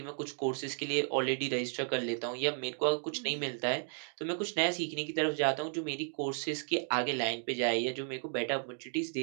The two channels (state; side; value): silent; left; 55 dB below the other